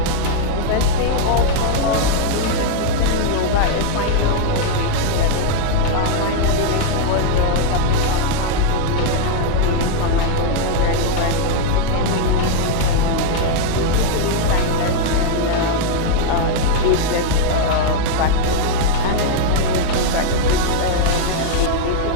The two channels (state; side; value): different; both; correlation 0.00